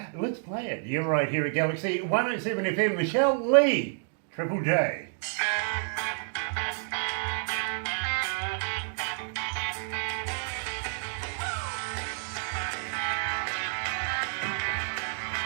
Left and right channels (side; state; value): left; silent; digital silence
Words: let's play it. You're right here at Galaxy 107 FM. Michelle Leigh, Triple J.